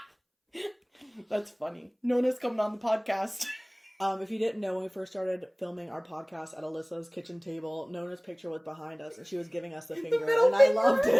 That's funny. Nona's coming on the podcast. If you didn't know, when we first started filming our podcast at Alyssa's kitchen table, Nona's picture was behind us, and she was giving us the finger, and I loved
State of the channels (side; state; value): both; identical; correlation 1.00